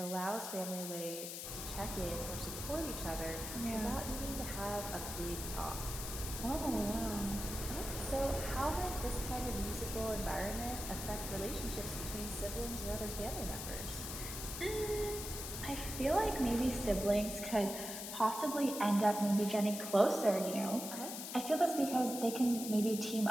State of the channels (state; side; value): noise; left; hiss, 6 dB below the sound